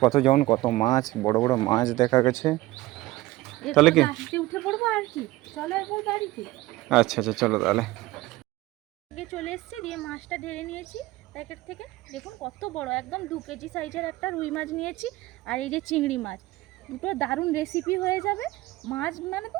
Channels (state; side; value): quieter; left; 18.3 dB